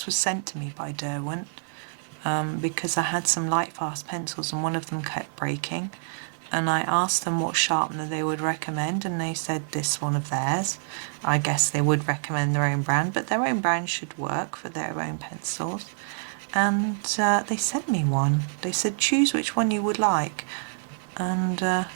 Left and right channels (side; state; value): left; silent; 58 dB below the other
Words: was sent to me by Derwent because I had some light fast pencils and one of them kept breaking, and I asked them what sharpener they would recommend, and they said this one of theirs. I guess they would recommend their own brand, but their own brand should work for their own pencils. And they sent me one. They said choose which one you would like. And well,